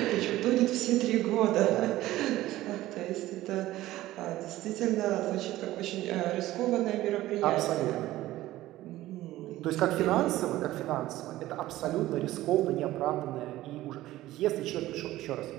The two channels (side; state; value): left; quieter; 15.9 dB